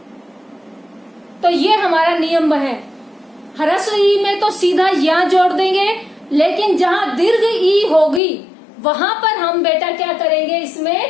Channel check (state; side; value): drops out; right; at 8.2 s